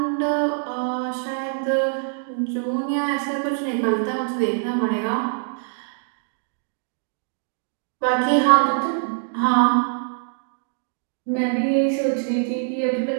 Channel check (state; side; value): silent; left; digital silence